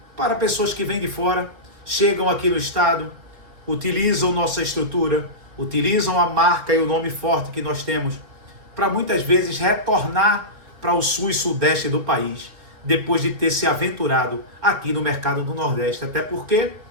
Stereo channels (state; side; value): late; left; 4.1 ms